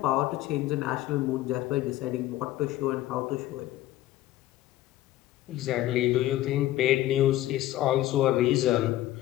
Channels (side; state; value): right; quieter; 14.9 dB